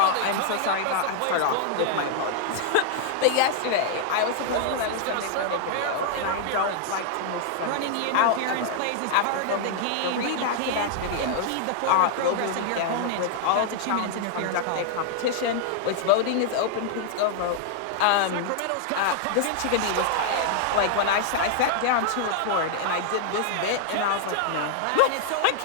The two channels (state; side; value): different; both; correlation 0.00